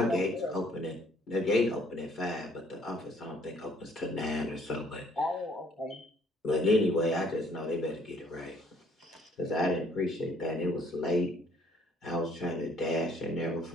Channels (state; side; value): normal; both; correlation 0.62